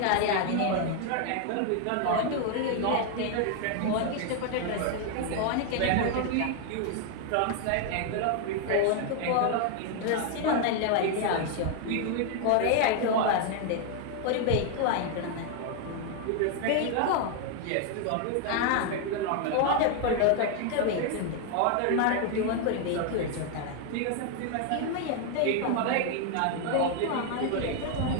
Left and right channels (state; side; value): different; both; correlation 0.00